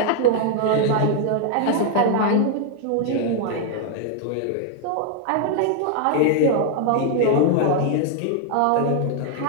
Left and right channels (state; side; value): different; both; correlation 0.00